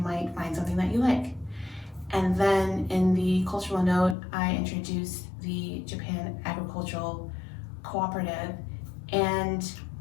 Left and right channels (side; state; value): right; drops out; at 4.2 s